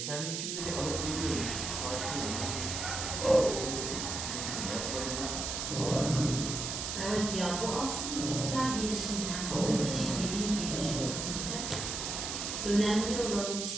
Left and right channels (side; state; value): right; noise; hiss, 3 dB below the sound